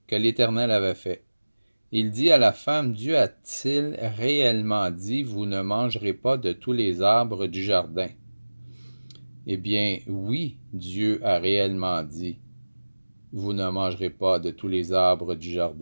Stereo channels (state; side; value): inverted; both; correlation -1.00